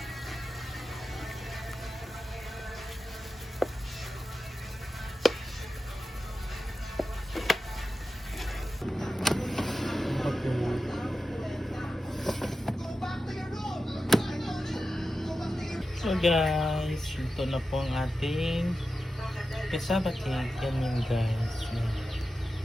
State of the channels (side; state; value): both; normal; correlation 0.92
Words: So guys, ito na po ang ating cassava cake. Yan yun guys. Yan.